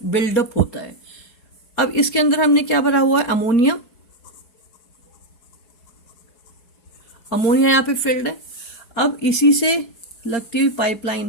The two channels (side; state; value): right; late; 4.7 ms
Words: बिल्डअप होता है। अब इसके अंदर हमने क्या भरा हुआ है, अमोनिया। अमोनिया यहाँ पे फिल्ड है। अब इसी से लगती हुई